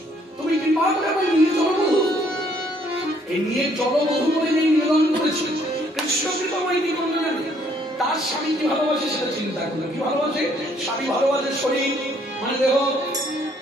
তুমি কৃপা করে আমার নিয়ে জলবধূ, এই নিয়ে জলবধূ বলে নেই নিবেদন করেছে। কৃষ্ণ কৃপাময় কি করবে না? তার স্বামী কি ভালোবাসে সেটা চিন্তা করলো। কি ভালোবাসে? স্বামী ভালোবাসে শরীর মানে দেহ,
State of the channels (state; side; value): normal; both; correlation 0.65